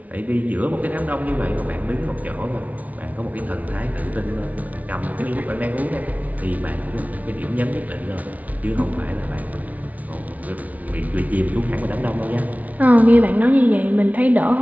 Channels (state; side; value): late; left; 0.071 ms